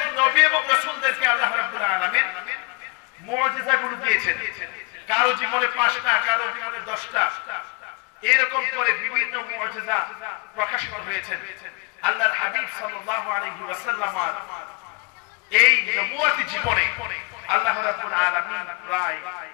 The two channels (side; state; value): right; quieter; 28.1 dB